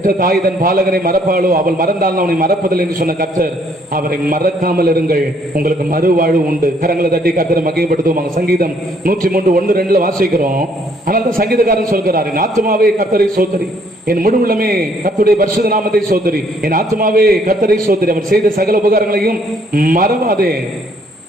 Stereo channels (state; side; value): normal; both; correlation 0.66